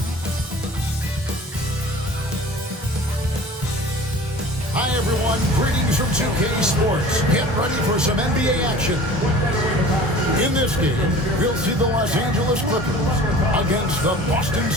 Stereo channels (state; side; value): normal; both; correlation 0.43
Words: Hi everyone, greetings from 2K Sports. Get ready for some NBA action. In this game, we'll see the Los Angeles Clippers against the Boston